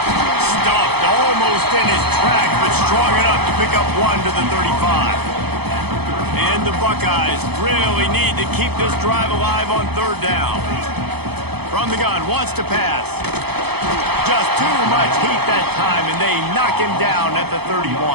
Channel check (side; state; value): left; late; 0.98 ms